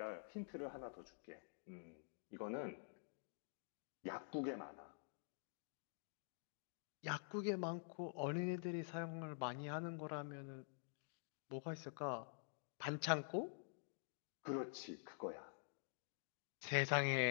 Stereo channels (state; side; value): silent; right; digital silence